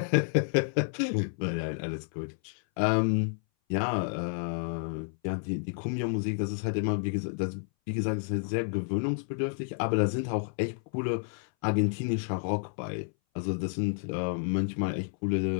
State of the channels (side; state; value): right; silent; 58 dB below the other